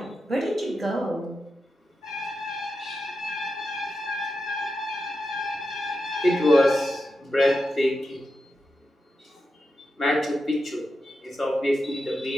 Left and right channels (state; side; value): normal; both; correlation 0.89